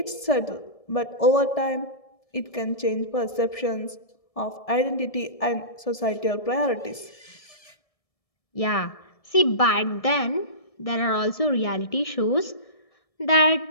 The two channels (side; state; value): right; late; 1.7 ms